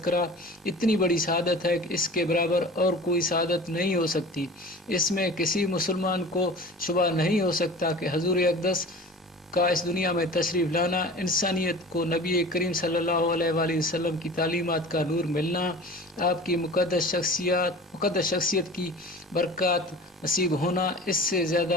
اتنی بڑی سعادت ہے کہ اس کے برابر اور کوئی سعادت نہیں ہو سکتی۔ اس میں کسی مسلمان کو شبہ نہیں ہو سکتا کہ حضور اقدس کا اس دنیا میں تشریف لانا، انسانیت کو نبی کریم صلی اللہ علیہ وآلہ وسلم کی تعلیمات کا نور ملنا، آپ کی مقدس شخصیت کی برکات نصیب ہونا، اس سے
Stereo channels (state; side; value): normal; both; correlation 0.39